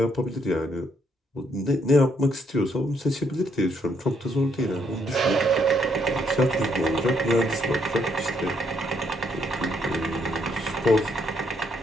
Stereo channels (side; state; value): both; normal; correlation 0.72